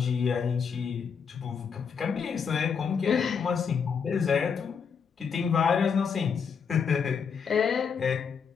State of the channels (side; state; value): right; quieter; 6.4 dB